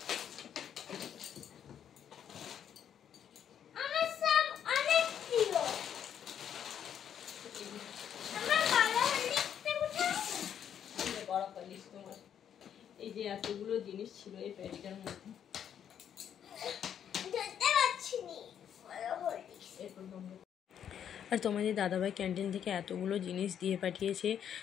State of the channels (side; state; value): right; quieter; 9.0 dB